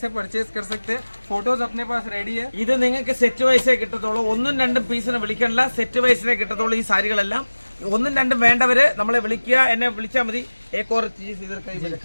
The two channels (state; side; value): inverted; both; correlation -1.00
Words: परचेज कर सकते हैं, फोटोज अपने पास रेडी है. ഇത് നിങ്ങൾക്ക് സെറ്റ് വൈസേ കിട്ടത്തുള്ളൂ. 1-2 പീസിനെ വിളിക്കണ്ട, സെറ്റ് വൈസിനെ കിട്ടത്തുള്ളൂ ഈ സാരികളെല്ലാം. 1-2 വേണ്ടവര് നമ്മളെ വിളിക്കുക, എന്നെ വിളിച്ചാൽ മതി. एक और चीज इधर कहीं पे